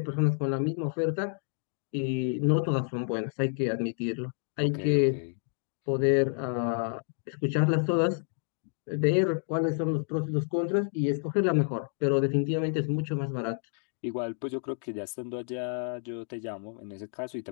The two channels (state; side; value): silent; right; digital silence